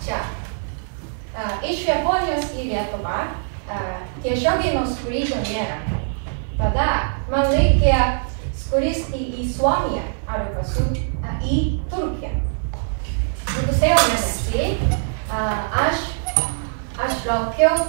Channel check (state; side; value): silent; left; 56 dB below the other